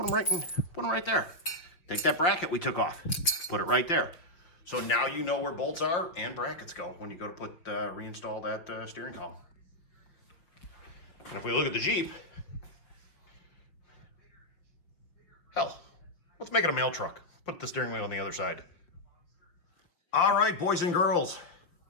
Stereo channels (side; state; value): right; late; 5.9 ms